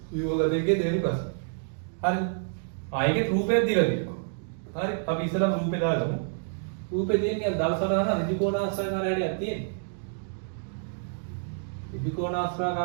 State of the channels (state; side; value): silent; left; digital silence